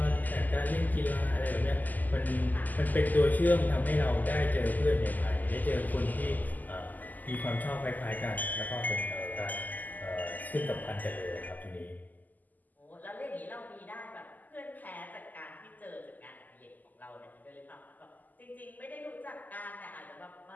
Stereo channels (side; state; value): right; late; 0.083 ms